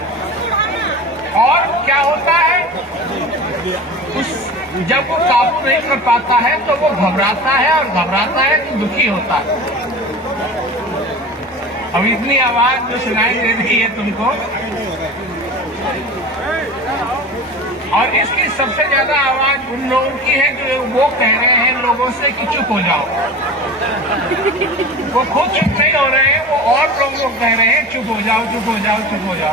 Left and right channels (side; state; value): both; normal; correlation 0.34